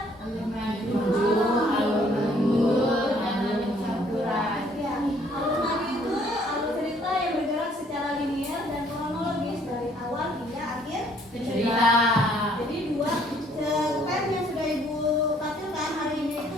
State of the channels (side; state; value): both; normal; correlation 0.62